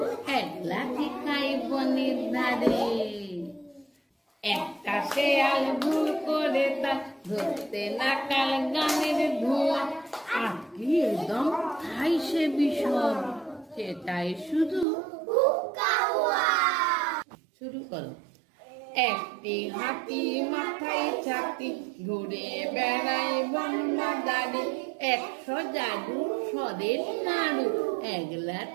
একলা খাই বনের ধারে। একটা শেয়াল ভুল করে তার ধরতে নাকাল গানের ধোঁয়া, আর কি একদম খাই সে বিষম, সেটাই শুধু শুরু করো। একটি হাতি মাথায় ছাতি, ঘুরে বেড়ায় বন বাদারে, 100 জাদু সরের নাড়ু,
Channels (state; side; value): drops out; left; at 14.9 s